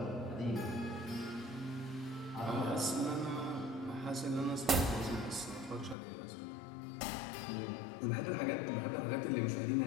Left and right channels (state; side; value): drops out; right; at 6.0 s